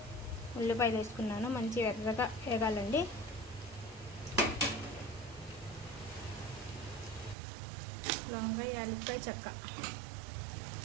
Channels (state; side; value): drops out; left; at 7.4 s